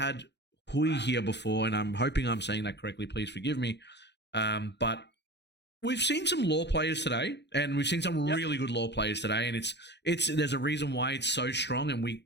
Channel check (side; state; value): right; late; 0.50 ms